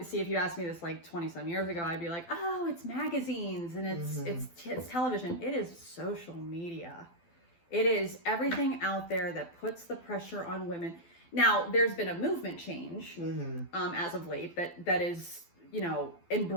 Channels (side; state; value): right; late; 12 ms